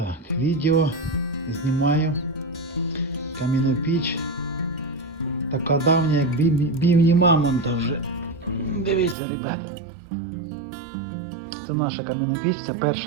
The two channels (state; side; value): drops out; left; at 9.2 s